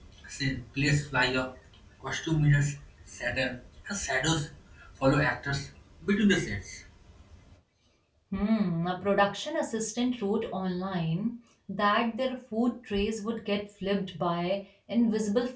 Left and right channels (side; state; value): both; identical; correlation 1.00